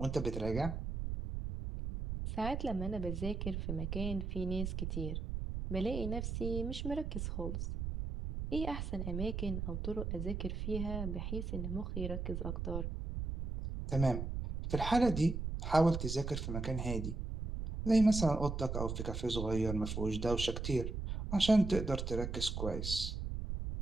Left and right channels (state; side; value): noise; right; rumble, 4 dB below the sound